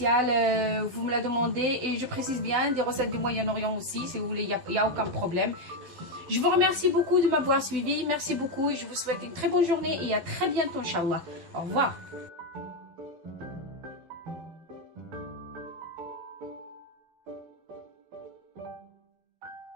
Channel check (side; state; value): left; late; 12 ms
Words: vous me la demandez. Et je précise bien, des recettes du Moyen-Orient aussi, si vous voulez, il n'y a aucun problème. Je vous remercie beaucoup de m'avoir suivi. Merci beaucoup et je vous souhaite une très bonne journée et à très bientôt, Inch'Allah. Au revoir.